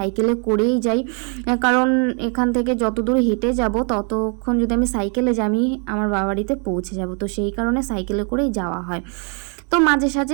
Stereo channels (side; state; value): left; quieter; 38.1 dB